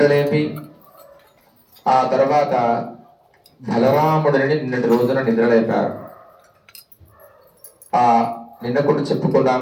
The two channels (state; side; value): identical; both; correlation 1.00